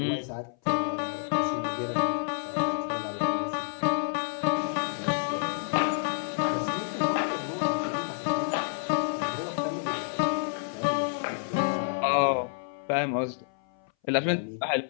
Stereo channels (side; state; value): right; silent; 59 dB below the other